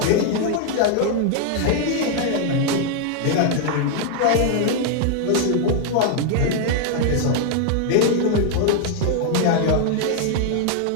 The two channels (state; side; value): different; both; correlation 0.00